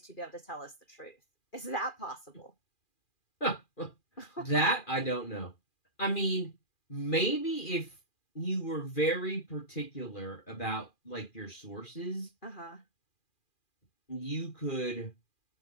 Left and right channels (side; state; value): right; late; 2.4 ms